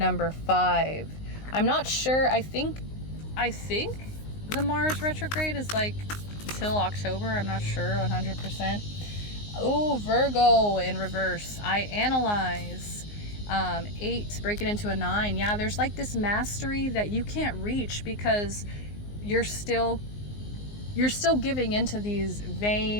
5. I'm not sure. I think the Mars retrograde is like till October. I'm not sure 100%. Oh, Virgo in reverse. I analyze. 8, break it into a 9. Yeah, there's like this mastery that you can't reach because you're still giving into these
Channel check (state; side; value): late; right; 19 ms